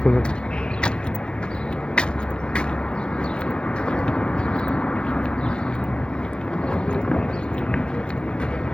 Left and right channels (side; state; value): right; late; 0.054 ms